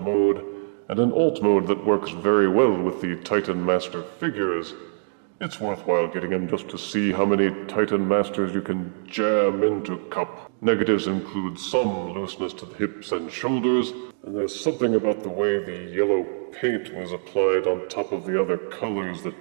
mode, and an alt mode that works very well with the Titan Master figures. It's worthwhile getting him just to see how many Titan Masters you can jam into Cup. Negatives include some looseness to the hips and shoulders, and there's something about the way the yellow paint was applied on top of the other colors that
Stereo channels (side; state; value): left; silent; digital silence